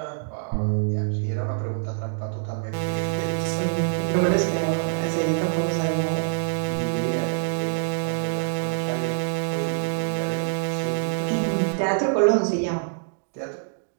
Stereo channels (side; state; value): left; silent; digital silence